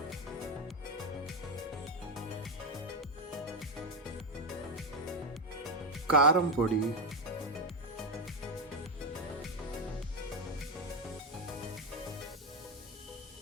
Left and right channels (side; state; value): both; normal; correlation 0.09